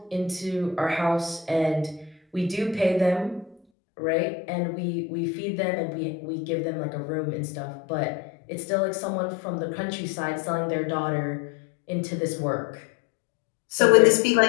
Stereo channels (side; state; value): right; drops out; at 3.6 s